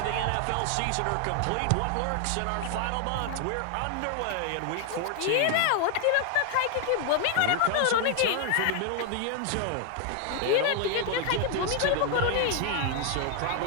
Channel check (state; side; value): different; both; correlation 0.00